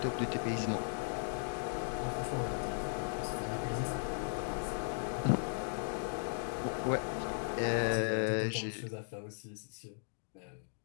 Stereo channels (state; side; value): silent; right; digital silence